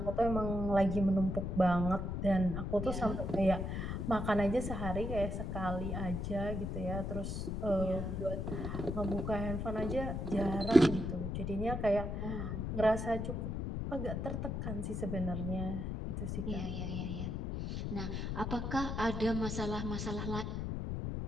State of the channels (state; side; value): noise; left; rumble, 3 dB below the sound